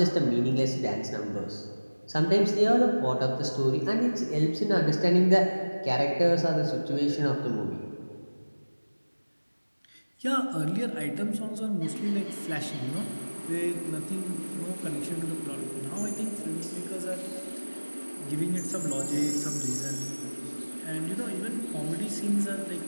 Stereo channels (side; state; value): both; inverted; correlation -1.00